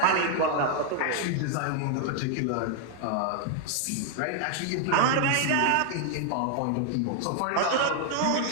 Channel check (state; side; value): different; both; correlation 0.00